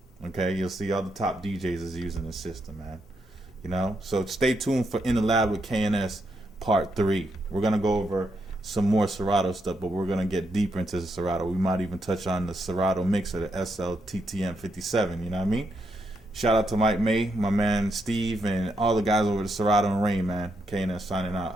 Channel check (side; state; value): both; normal; correlation 0.80